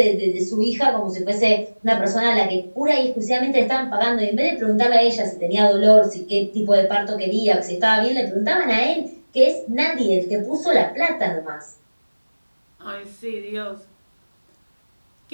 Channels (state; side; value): inverted; both; correlation -1.00